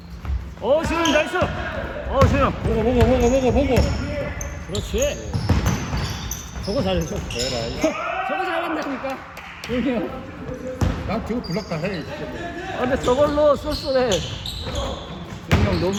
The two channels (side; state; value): both; identical; correlation 1.00